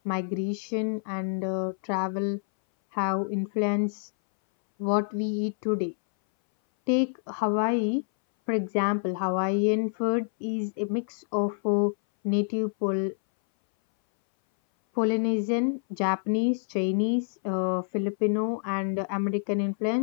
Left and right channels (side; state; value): right; silent; 59 dB below the other